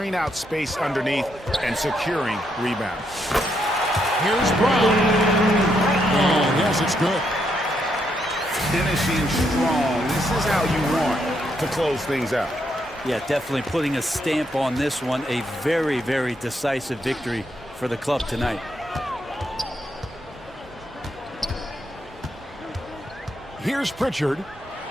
out space underneath and securing rebounds. Here's Brown. Oh, yes, it's good. Finishing strong. This is how you want to close things out. Yeah, definitely putting a stamp on this one. A very, very decisive victory for the club tonight. Here's Pritchard.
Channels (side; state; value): both; normal; correlation 0.77